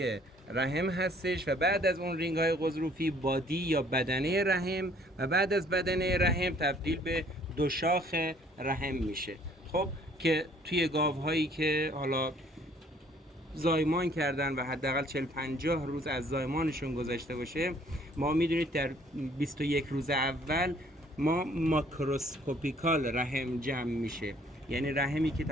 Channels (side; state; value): both; normal; correlation 0.59